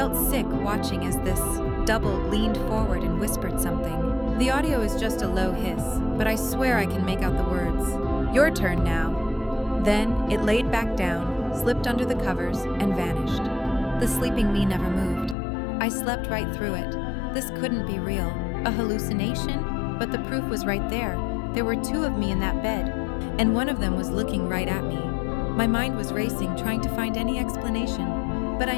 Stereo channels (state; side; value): drops out; right; at 15.4 s